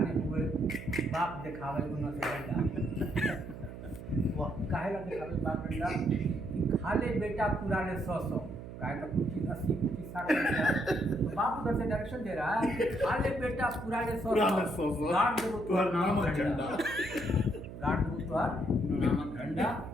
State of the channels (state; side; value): noise; right; hum, 11 dB below the sound